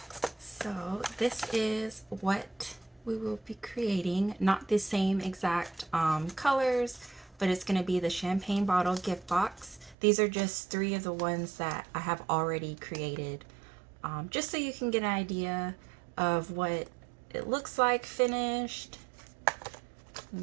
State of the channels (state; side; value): drops out; left; at 10.0 s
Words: So this is what we will be creating. Not the same exact colors, but it's going to be the champagne bottle gift box. These are just 3 of the ones that I have already created. Just so you can get an idea of what it looks like finished.